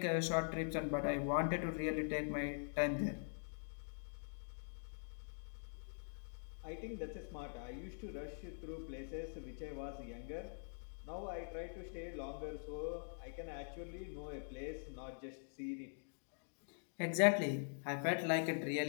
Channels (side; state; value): right; silent; digital silence